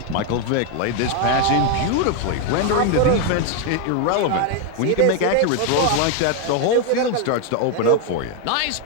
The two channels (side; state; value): both; different; correlation 0.01